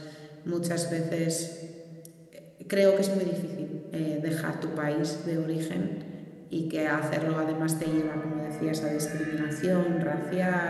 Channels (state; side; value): identical; both; correlation 1.00